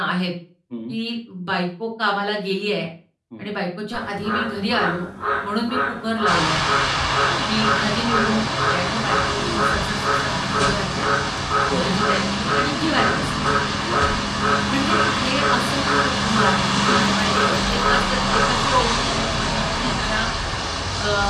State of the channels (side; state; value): both; identical; correlation 1.00